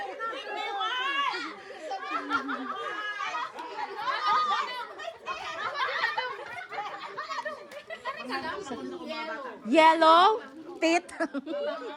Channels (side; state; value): both; identical; correlation 1.00